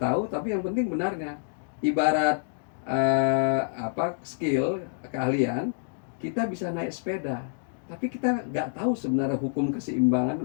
tapi yang penting benarnya. Ibarat skill keahlian, kita bisa naik sepeda, tapi kita nggak tahu sebenarnya hukum keseimbangan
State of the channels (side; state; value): right; silent; digital silence